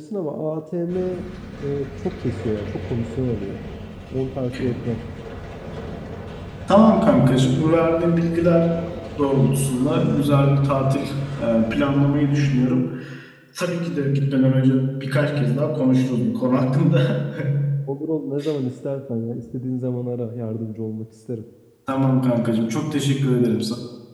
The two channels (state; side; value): identical; both; correlation 1.00